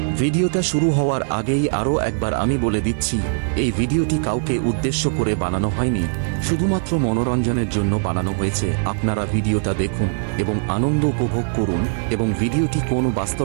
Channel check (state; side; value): silent; left; digital silence